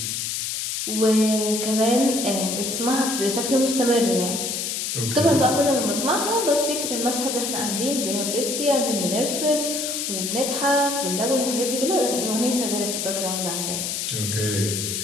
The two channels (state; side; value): noise; left; hiss, 2 dB below the sound